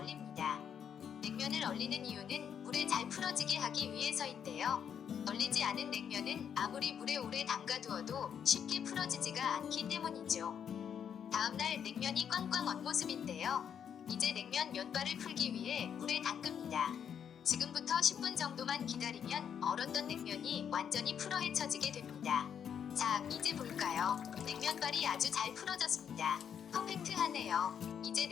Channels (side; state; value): right; quieter; 8.2 dB